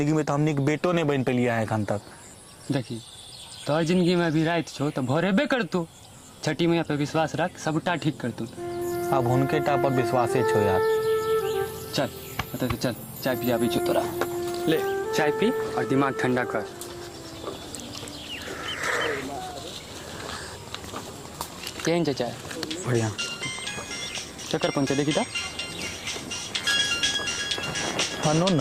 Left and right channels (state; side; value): identical; both; correlation 1.00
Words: में तो हमनी के बेटो नहीं बन पेलिए हैं एखन तक। देखी तोहर जिंदगी में अभी रात छौ तो भोर हेबे करतौ। छठी मैया पे विश्वास रख, सबटा ठीक करतौ। अब हुनके टा पर विश्वासे छो यार। चल अतः चल, चाय पियाबी छौ तोरा। ले चाय पी और दिमाग ठंडा कर। केहन छै चाय? बढ़िया। चक्कर पहुँचे देखी तऽ। अननोन